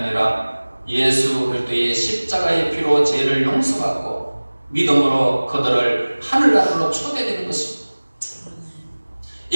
예수 그리스도의 십자가의 피로 죄를 용서받고 믿음으로 그들을 하늘나라로 초대되는 것입니다.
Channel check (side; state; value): both; inverted; correlation -1.00